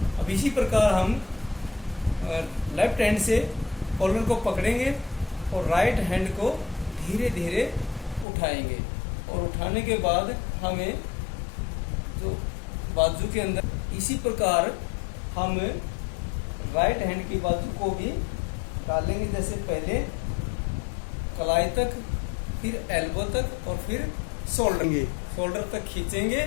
अब इसी प्रकार हम लेफ्ट हैंड से कॉलर को पकड़ेंगे और राइट हैंड को धीरे धीरे उठाएंगे और उठाने के बाद हमें जो बाजू के अंदर इसी प्रकार हम राइट हैंड की बाजू को भी डालेंगे। जैसे पहले कलाई तक, फिर एल्बो तक और फिर शोल्डर तक खींचेंगे।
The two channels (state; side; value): drops out; right; at 8.2 s